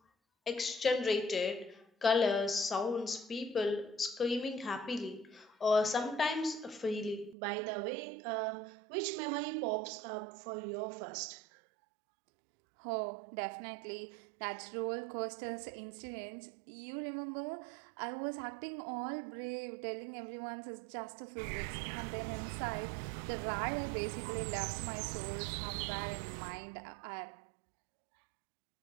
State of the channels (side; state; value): left; drops out; at 7.4 s